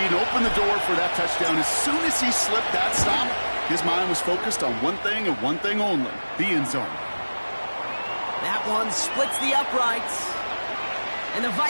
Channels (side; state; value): both; inverted; correlation -1.00